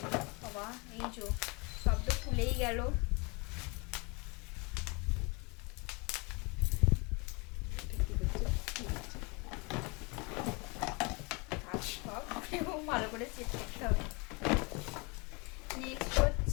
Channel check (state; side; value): quieter; right; 29.2 dB